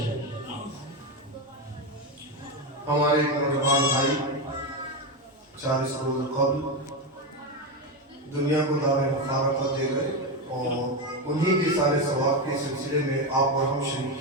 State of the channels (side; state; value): both; normal; correlation 0.12